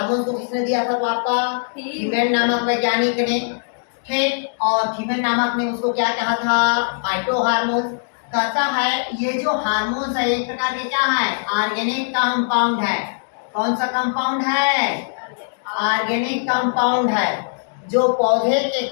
को किसने दिया था तो आपका थीमेन नामक वैज्ञानिक ने। ठीक। और थीमेन नामक ने उसको क्या कहा था? Phyto hormones. कहता है ये जो हार्मोन्स है एक प्रकार के क्या है? ऑर्गेनिक कंपाउंड है। कौन सा कंपाउंड है? ऑर्गेनिक कंपाउंड है, जो पौधे के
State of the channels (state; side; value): silent; right; digital silence